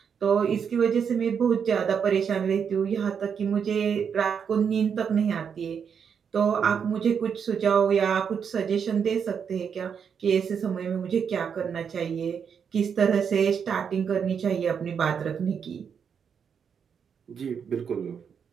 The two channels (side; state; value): left; quieter; 7.1 dB